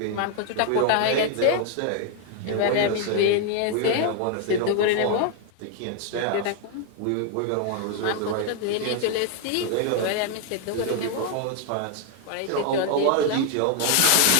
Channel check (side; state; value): both; different; correlation 0.00